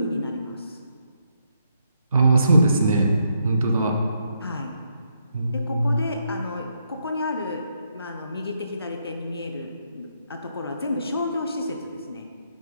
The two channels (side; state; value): both; inverted; correlation -0.77